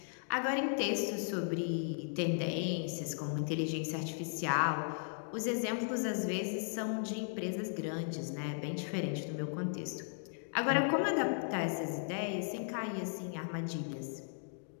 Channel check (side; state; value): right; silent; digital silence